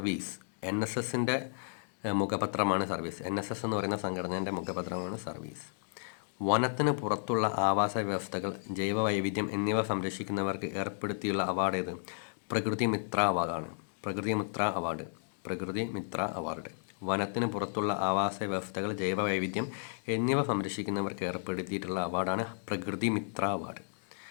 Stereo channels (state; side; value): silent; right; digital silence